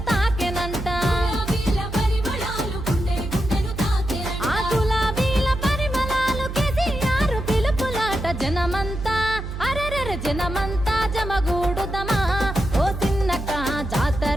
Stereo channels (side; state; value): right; noise; hum, 7 dB below the sound